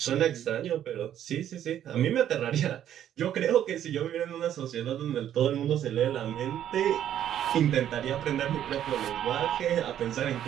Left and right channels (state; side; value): quieter; left; 10.7 dB